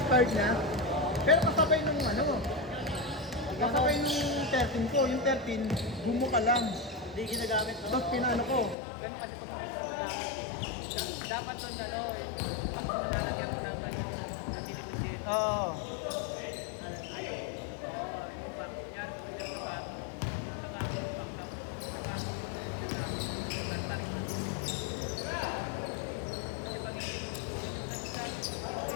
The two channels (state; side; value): drops out; right; at 8.8 s